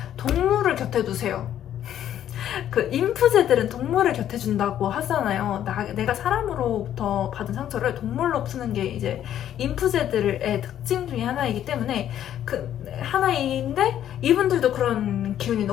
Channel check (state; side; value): quieter; right; 10.9 dB